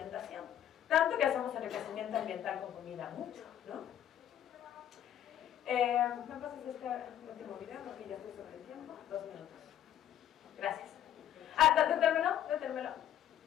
Tanto que hacemos enriquecimiento ambiental con comida mucho, ¿no? ¿Me pasas este último video? Porque ya estoy sobre el tiempo. 2 minutos. Gracias. Detérmelo.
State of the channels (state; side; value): quieter; right; 10.9 dB